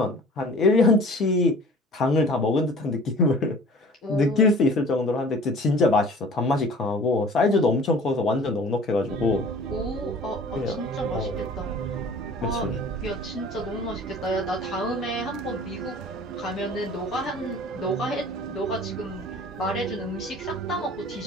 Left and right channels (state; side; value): normal; both; correlation 0.46